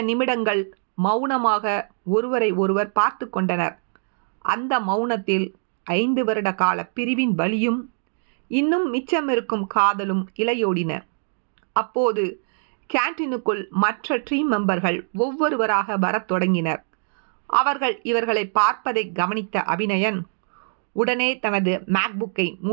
நிமிடங்கள் மௌனமாக ஒருவரை ஒருவர் பார்த்து கொண்டனர். அந்த மௌனத்தில் 5 வருட கால பிரிவின் வலியும் இன்னும் மிச்சமிருக்கும் காதலும் இலையோடின. அப்போது கேன்டீனுக்குள் மற்ற டீம் மெம்பர்கள் ஒவ்வொருவராக வரத் தொடங்கினர். அவர்கள் இவர்களை பார்ப்பதை கவனித்த அபிநயன் உடனே தனது மேக்புக்கை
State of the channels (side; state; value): left; silent; digital silence